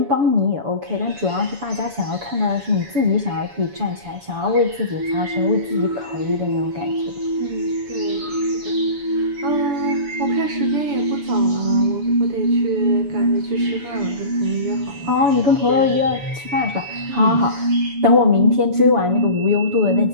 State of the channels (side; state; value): left; late; 7.0 ms